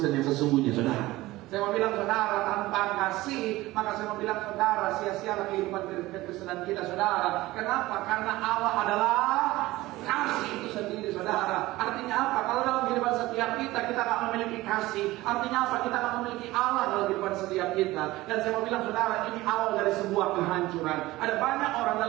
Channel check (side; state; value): left; quieter; 18.4 dB